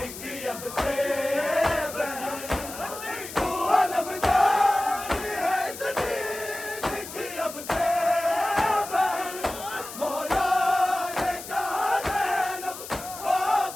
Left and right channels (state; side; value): noise; left; hiss, 12 dB below the sound